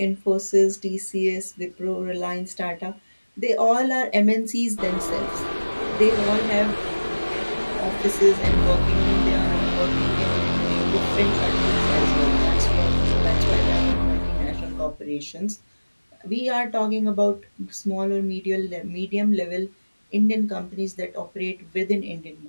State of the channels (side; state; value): both; inverted; correlation -1.00